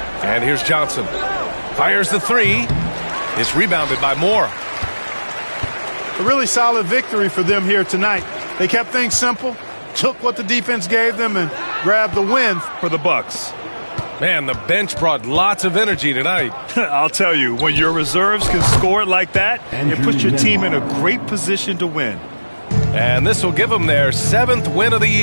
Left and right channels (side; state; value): both; inverted; correlation -1.00